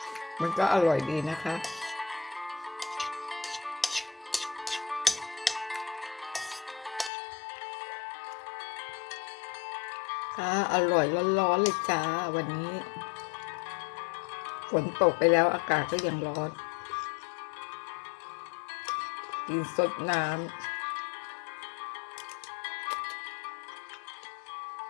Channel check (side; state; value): right; drops out; at 7.1 s